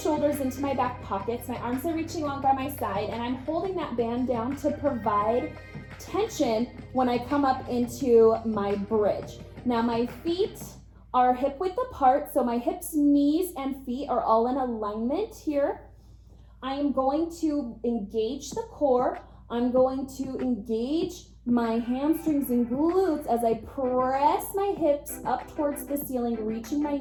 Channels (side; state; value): both; identical; correlation 1.00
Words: into my back pockets, my arms are reaching along by my side, and I'm holding that band down to provide tension when I come up into my bridge. Now my feet are hip width apart, so my hips, knees, and feet are all in alignment here. I am going to engage the core. I'm going to engage my hamstrings and glutes as I press my hips up towards the ceiling, reaching my